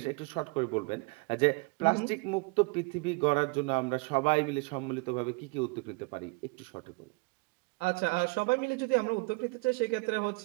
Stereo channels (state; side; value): quieter; left; 28.2 dB